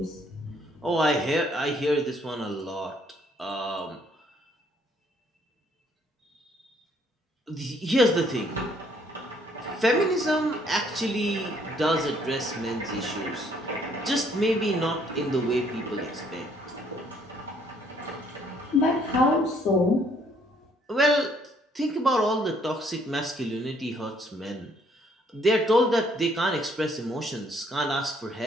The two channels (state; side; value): normal; both; correlation 0.65